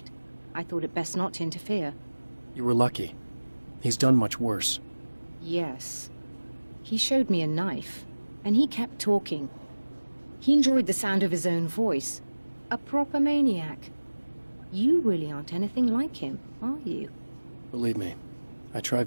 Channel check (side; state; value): both; inverted; correlation -1.00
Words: I thought it best not to interfere. You were lucky. He's done much worse. Yes. He showed me a knife, and he kept talking. He enjoyed the sound of his own voice. A proper maniac. You really aren't anything like him, are you? Believe me, I try